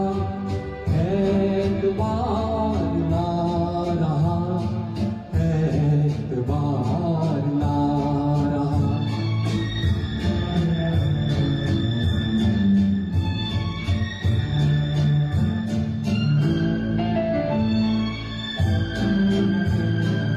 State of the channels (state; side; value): identical; both; correlation 1.00